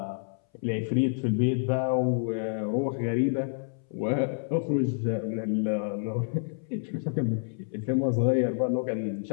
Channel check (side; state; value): right; silent; 59 dB below the other